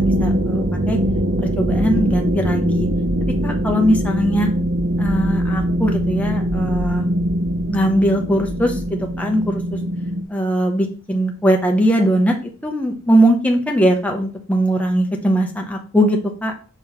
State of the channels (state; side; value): normal; both; correlation 0.80